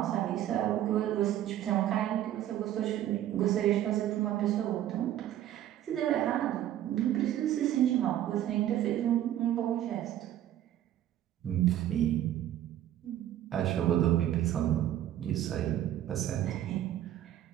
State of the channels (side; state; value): left; quieter; 12.2 dB